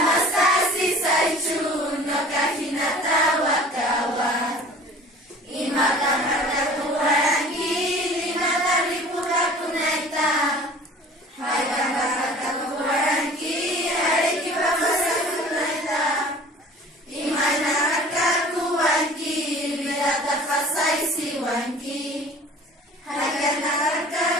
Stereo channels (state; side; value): normal; both; correlation 0.46